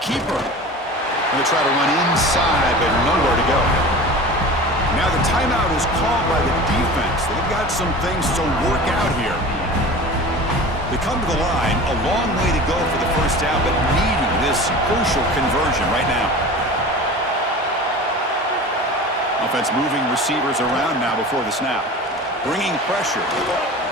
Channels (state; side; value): normal; both; correlation 0.36